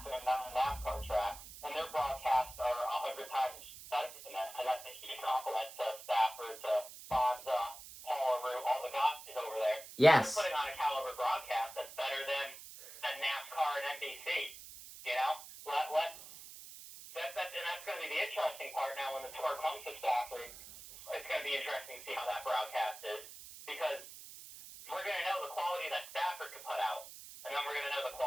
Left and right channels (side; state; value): right; noise; hiss, 14 dB below the sound